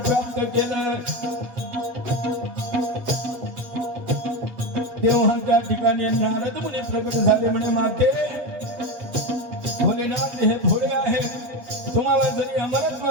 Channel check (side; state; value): left; late; 8.2 ms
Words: केलं. तेव्हा त्या ठिकाणी नारद मुनी प्रकट झाले. म्हणे माते भोलेनाथ हे भोळे आहेत, तुम्हाला जरी